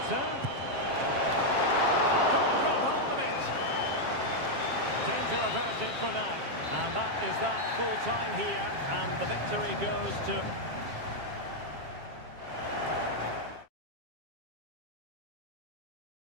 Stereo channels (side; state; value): left; late; 7.5 ms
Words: Couldn't grab hold of it. Danger averted for now. And that is that full time here, and the victory goes to